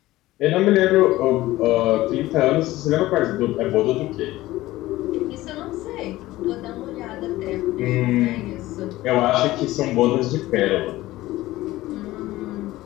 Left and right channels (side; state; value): right; quieter; 17.1 dB